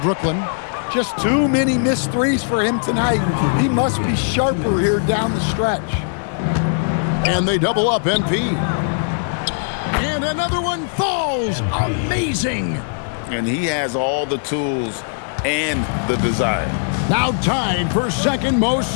Brooklyn. Just too many missed threes for him tonight. He must be sharper here down the stretch. And they double up MP. And another one falls. Amazing. And he has all the tools and the desire. Now tied for second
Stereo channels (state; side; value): silent; right; 65 dB below the other